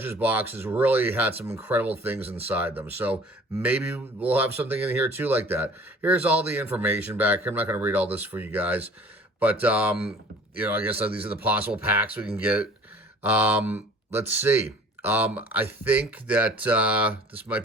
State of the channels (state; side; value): normal; both; correlation 0.49